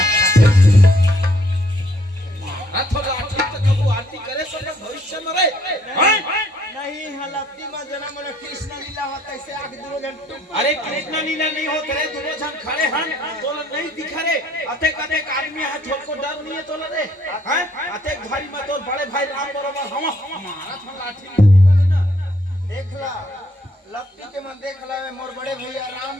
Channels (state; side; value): normal; both; correlation 0.66